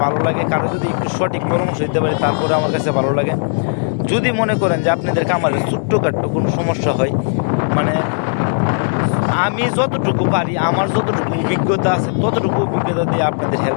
ভালো লাগে, কারো যদি একটু সঠিক পরামর্শ দিতে পারে তারপরে আমার কাছে ভালো লাগে। যদি মনে করেন যে আপনাদের খামারে ছোট্টখাট্টো কোনো সমস্যা হয়, মানে আমি যতটুকু পারি, আমার যতটুকু অভিজ্ঞতা আছে ততটুকু অভিজ্ঞতা দিয়ে আপনাদের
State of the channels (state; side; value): silent; right; digital silence